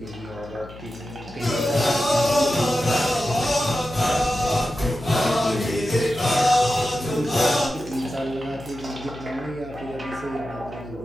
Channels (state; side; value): noise; left; hum, 16 dB below the sound